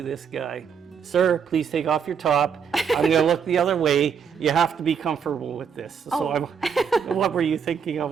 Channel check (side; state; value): left; quieter; 6.8 dB